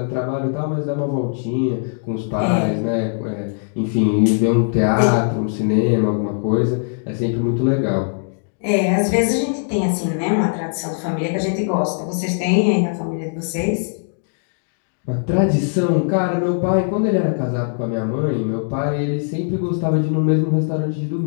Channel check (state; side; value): silent; right; digital silence